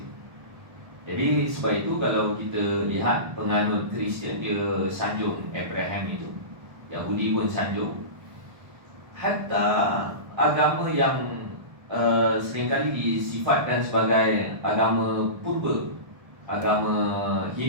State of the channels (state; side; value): late; left; 1.2 ms